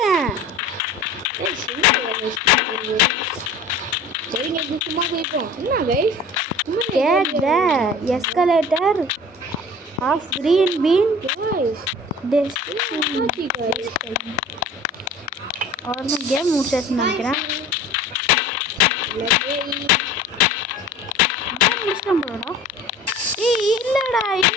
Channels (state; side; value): normal; both; correlation 0.42